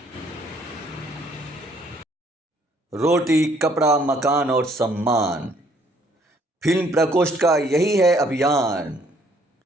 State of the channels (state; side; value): normal; both; correlation 0.64